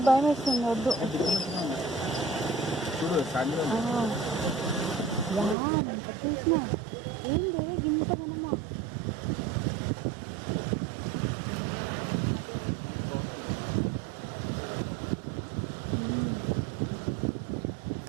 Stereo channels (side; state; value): left; drops out; at 5.6 s